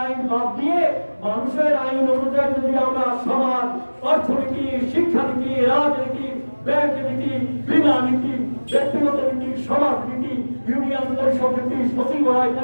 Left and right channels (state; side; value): inverted; both; correlation -1.00